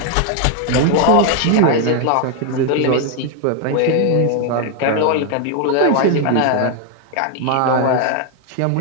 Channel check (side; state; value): both; different; correlation 0.01